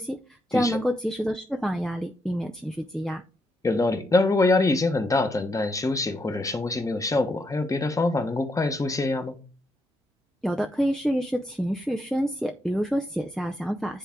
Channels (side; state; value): both; normal; correlation 0.80